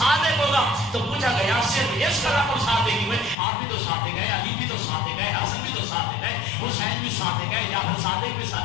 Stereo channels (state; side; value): drops out; right; at 3.4 s